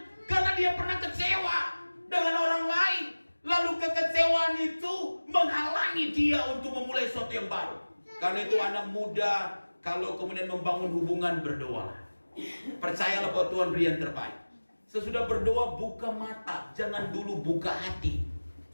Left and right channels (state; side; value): inverted; both; correlation -1.00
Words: karena dia pernah kecewa dengan orang lain. Lalu kekecewaan itu menghalangi dia untuk memulai sesuatu yang baru. Karena itu anak muda, kalau kemudian membangun hubungan, berdoa. Percayalah bahwa Tuhan beri yang terbaik. Sesudah berdoa, buka mata. Jangan dulu buka hati.